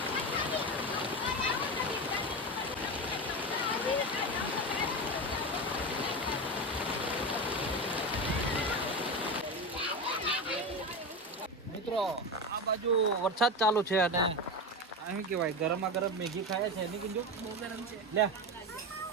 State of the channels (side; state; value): both; normal; correlation 0.20